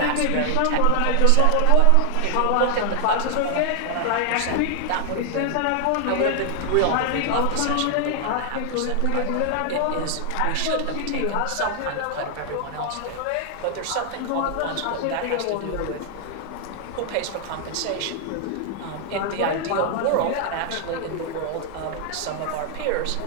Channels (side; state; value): both; different; correlation 0.00